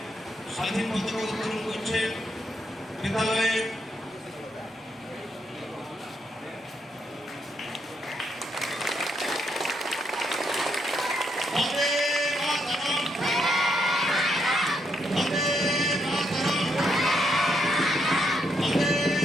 স্বাধীন পতাকা উত্তোলন করছে বিদ্যালয়ে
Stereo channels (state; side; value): normal; both; correlation 0.78